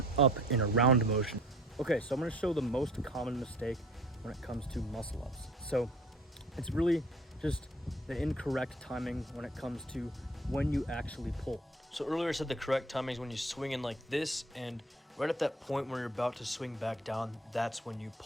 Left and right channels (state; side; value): normal; both; correlation 0.51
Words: up and around motion. Okay, so I'm going to show the most common mistake when it comes to muscle ups. So it's really just the incorrect timing when it comes to when you actually pull. So earlier I said the correct timing is when you swing in like this, and right at that point where you're about to swing back down, that's when you